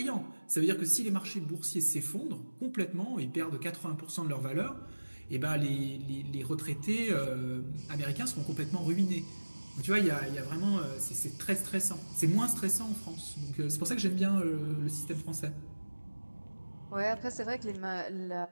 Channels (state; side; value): inverted; both; correlation -1.00